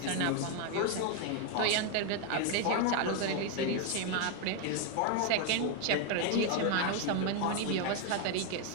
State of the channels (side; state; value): both; different; correlation 0.01